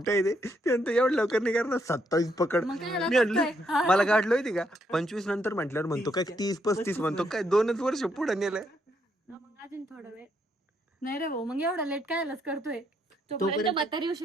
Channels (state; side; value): normal; both; correlation 0.75